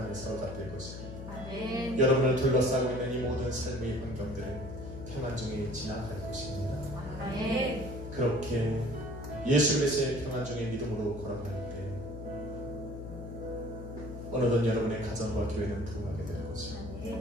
안에 사로잡힐 것입니다. 아멘. 여러분을 둘러싸고 있는 이 모든 삶의 환경들은 평안 중에 지나갈 것입니다. 아멘. 그렇게 예수 그리스도의 평안 중에 믿음으로 걸어갈 때 어느덧 여러분의 가정과 교회는 부흥하게 될 것입니다.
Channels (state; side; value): noise; left; hum, 10 dB below the sound